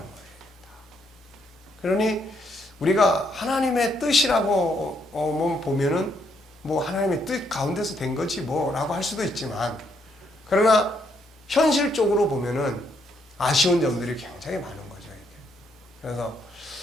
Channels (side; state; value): both; normal; correlation 0.74